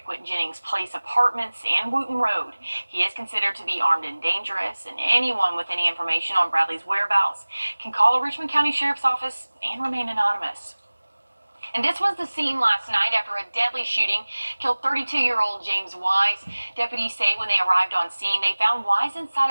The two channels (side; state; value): both; inverted; correlation -1.00